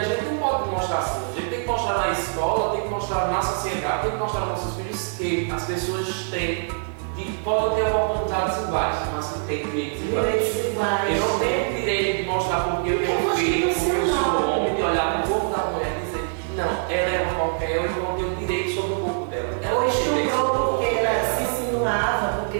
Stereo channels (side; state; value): left; silent; digital silence